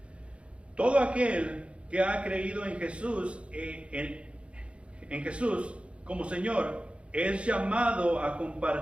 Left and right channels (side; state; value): left; late; 0.059 ms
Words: Todo aquel que ha creído en Jesús, en Jesús como Señor, es llamado a